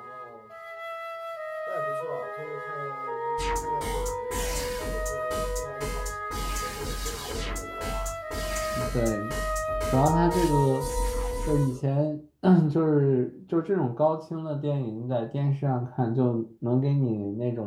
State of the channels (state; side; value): identical; both; correlation 1.00